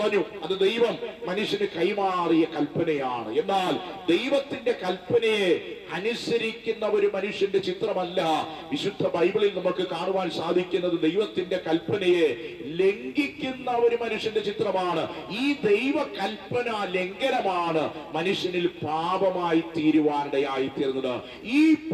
അത് ദൈവം മനുഷ്യന് കൈമാറിയ കൽപ്പനയാണ്. എന്നാൽ ദൈവത്തിന്റെ കൽപ്പനയെ അനുസരിക്കുന്ന ഒരു മനുഷ്യന്റെ ചിത്രമല്ല വിശുദ്ധ ബൈബിളിൽ നമുക്ക് കാണുവാൻ സാധിക്കുന്നത്. ദൈവത്തിന്റെ കൽപ്പനയെ ലംഘിക്കുന്ന ഒരു മനുഷ്യന്റെ ചിത്രമാണ്. ഈ ദൈവ കൽപ്പന ലംഘനമാണ് മനുഷ്യനിൽ പാപമായി തീരുവാനിടയായി തീർന്നത്. ഈ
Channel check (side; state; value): both; identical; correlation 1.00